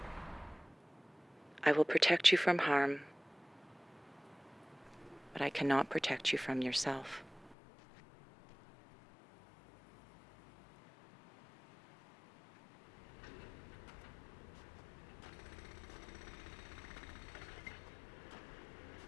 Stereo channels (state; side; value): drops out; right; at 7.6 s